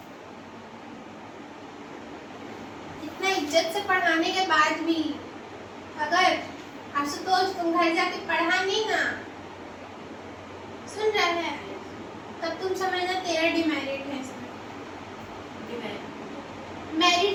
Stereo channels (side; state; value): both; identical; correlation 1.00